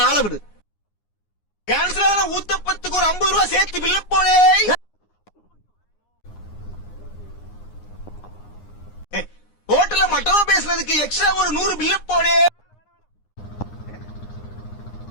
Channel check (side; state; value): right; late; 9.7 ms